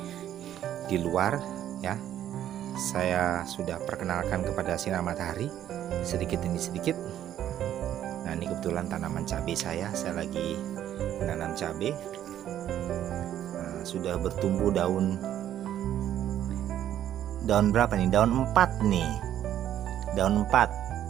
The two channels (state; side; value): quieter; left; 11.3 dB